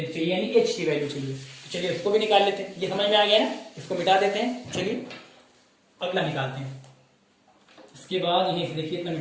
चाहिए, यानी h की वैल्यू चाहिए। तो चलिए इसको भी निकाल लेते हैं, ये समझ में आ गया ना, इसको मिटा देते हैं। चलिए अगला निकालते हैं, इसके बाद यही देखिए इतना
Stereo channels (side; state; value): both; identical; correlation 1.00